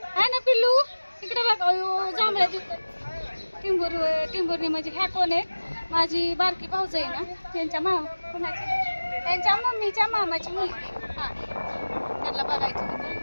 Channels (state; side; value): inverted; both; correlation -1.00